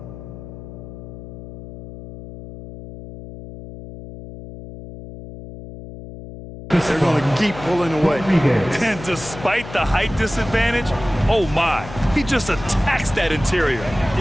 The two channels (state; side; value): noise; left; hum, 13 dB below the sound